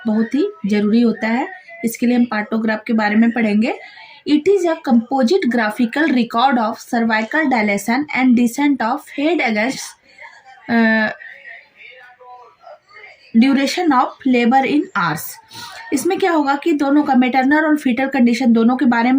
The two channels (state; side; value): identical; both; correlation 1.00